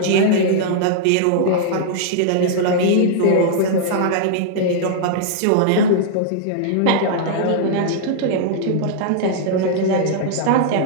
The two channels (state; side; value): different; both; correlation -0.02